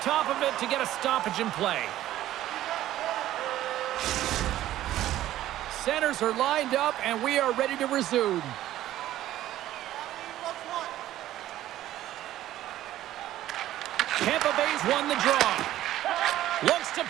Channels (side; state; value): left; quieter; 13.7 dB